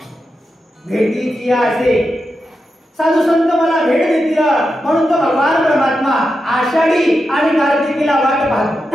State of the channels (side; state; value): both; normal; correlation 0.88